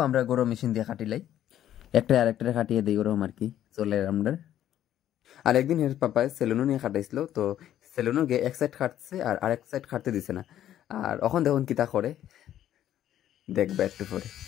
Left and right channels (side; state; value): right; quieter; 11.5 dB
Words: আমরা গরু মেশিন দিয়ে কাটিলাই, একটা আর একটা কাটিয়ে দিই ওরকম আর কি চলে আমরা। আর একদিন এর পাপায় সেলুনও নিয়ে কাটাইছিল, তো সেলুনও গিয়ে এক সাইড কাটছে আর আরেক সাইড কাটতে দিছে না। আর এখন দেখুন কিতা করে, দেখবে একটু পরে।